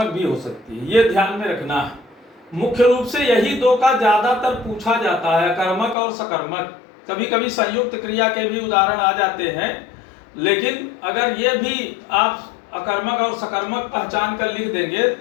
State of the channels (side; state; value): right; drops out; at 6.0 s